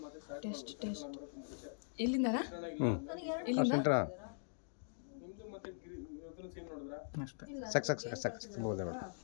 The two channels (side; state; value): right; silent; digital silence